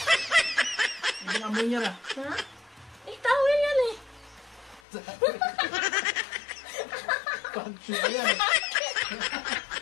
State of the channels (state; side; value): drops out; right; at 4.8 s